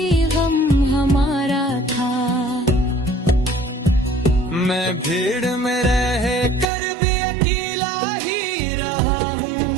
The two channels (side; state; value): left; drops out; at 6.7 s